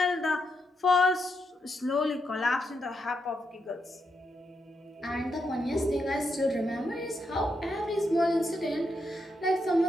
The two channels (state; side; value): normal; both; correlation 0.82